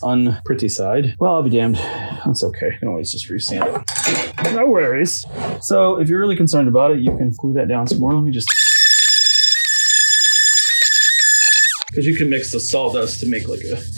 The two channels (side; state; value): both; inverted; correlation -1.00